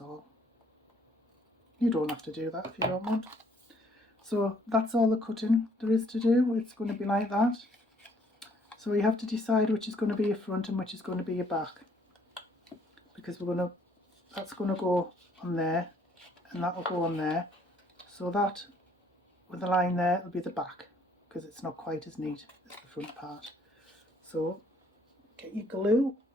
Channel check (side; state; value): both; normal; correlation 0.64